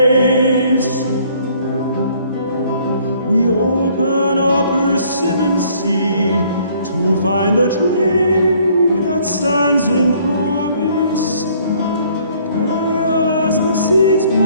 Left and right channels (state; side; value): inverted; both; correlation -0.61